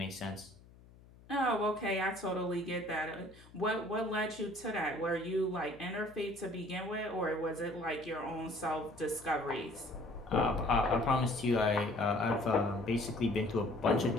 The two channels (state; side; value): noise; left; hum, 23 dB below the sound